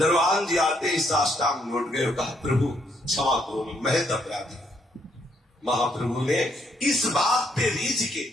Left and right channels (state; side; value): normal; both; correlation 0.72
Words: जी आते ही साष्टांग लौट गए, कहा प्रभु क्षमा करो, मैं महत अपराधी। महाप्रभु ने इस बात पे रीझ के